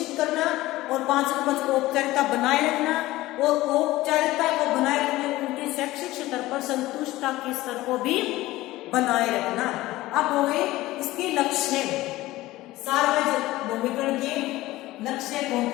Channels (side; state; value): right; quieter; 17.5 dB